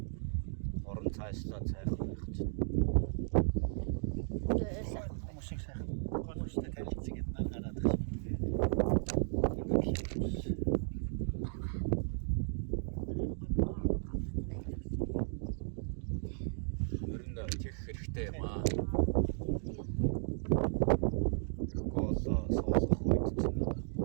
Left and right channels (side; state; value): left; silent; digital silence